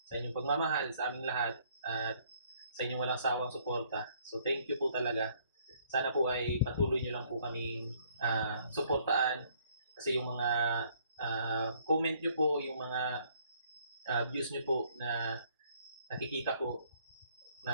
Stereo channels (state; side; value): inverted; both; correlation -0.63